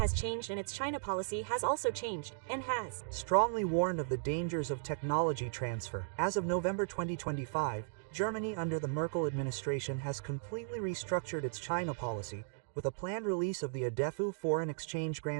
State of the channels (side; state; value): left; silent; digital silence